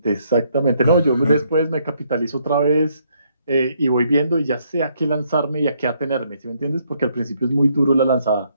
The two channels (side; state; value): both; inverted; correlation -0.71